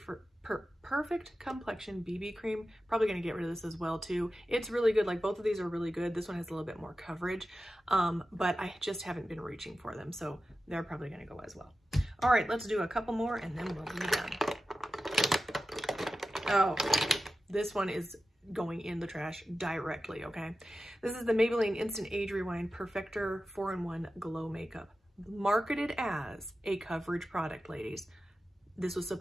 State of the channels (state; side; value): normal; both; correlation 0.93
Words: Complexion BB Cream, probably going to get rid of this as well too. It's really good. Like, both of these are really good. This one has a little bit more coverage, but I just haven't been reaching for them, so they're probably going to go as well. All right, let's do a couple more and then we'll be done. Oh, this one is going in the trash directly, okay? This is the Maybelline Instant Age Rewind Perfector 4-in-1 Glow Makeup. Marketed as a coverage product, ladies. This was